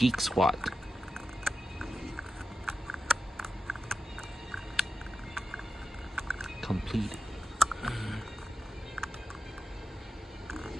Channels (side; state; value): both; normal; correlation 0.91